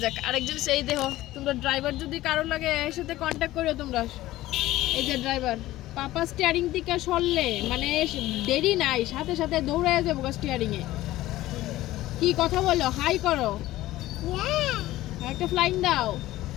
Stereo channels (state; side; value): quieter; right; 16.2 dB